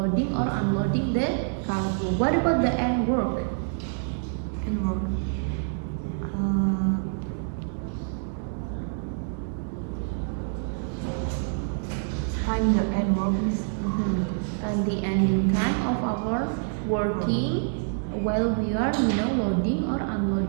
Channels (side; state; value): left; silent; 60 dB below the other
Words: or unloading the cargo. What about the end work? End work. Time the end work, Miss. And the ending time of our working while we are loading or